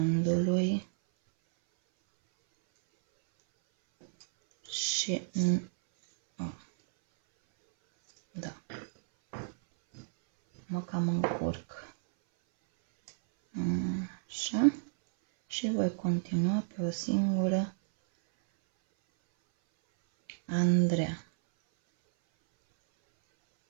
Și da, mă cam încurc. Așa. Și voi continua pe o singură Andreea.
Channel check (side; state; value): left; silent; 57 dB below the other